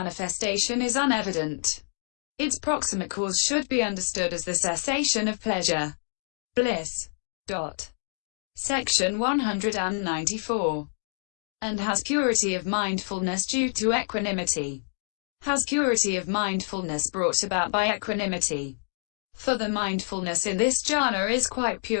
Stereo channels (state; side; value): silent; right; digital silence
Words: is unevident. Its proximate cause should be understood as the cessation of pleasure. Bliss. Section 194. And has purity of mindfulness due to equanimity. Has purity of mindfulness brought about by equanimity. For the mindfulness in this jhana is quite